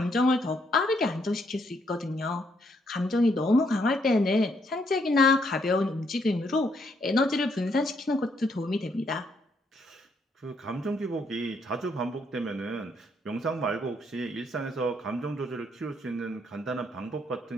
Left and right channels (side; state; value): both; normal; correlation 0.73